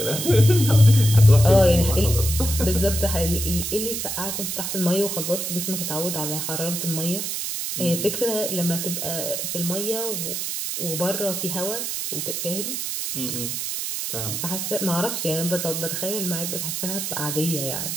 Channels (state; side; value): noise; right; hiss, 3 dB below the sound